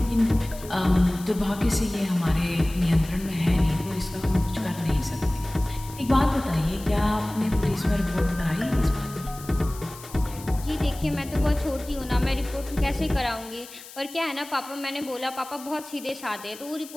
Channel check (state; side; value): noise; left; hiss, 17 dB below the sound